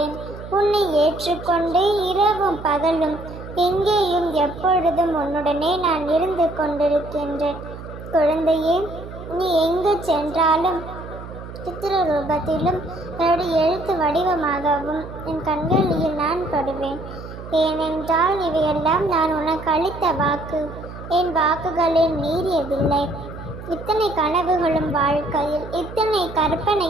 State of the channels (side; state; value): right; noise; hum, 13 dB below the sound